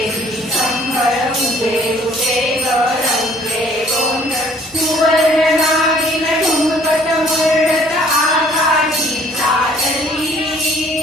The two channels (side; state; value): both; normal; correlation 0.58